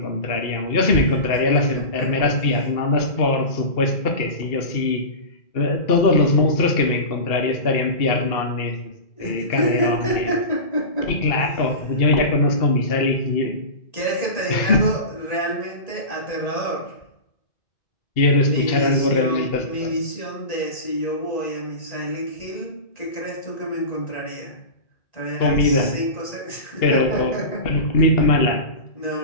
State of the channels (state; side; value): late; right; 2.7 ms